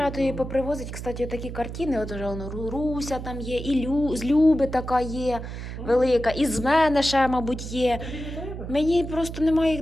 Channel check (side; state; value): right; noise; hum, 8 dB below the sound